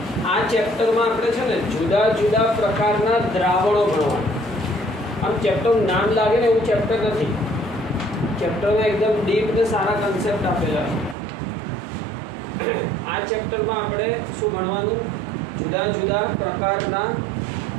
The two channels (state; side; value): drops out; left; at 11.2 s